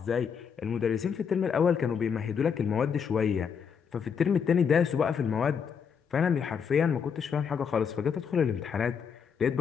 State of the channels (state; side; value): quieter; right; 6.8 dB